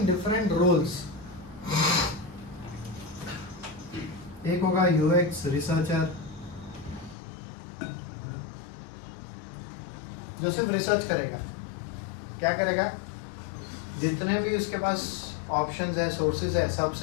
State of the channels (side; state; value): right; drops out; at 7.2 s